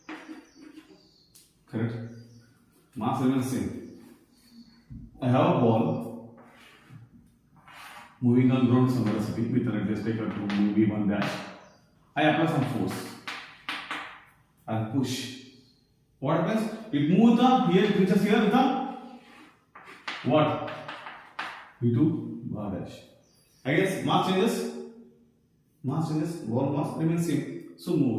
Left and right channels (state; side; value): identical; both; correlation 1.00